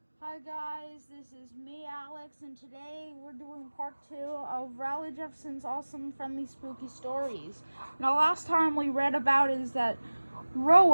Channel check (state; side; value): inverted; both; correlation -1.00